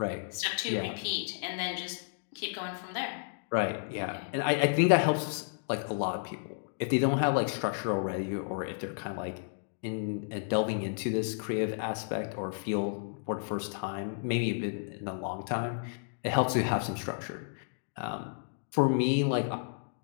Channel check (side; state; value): right; silent; digital silence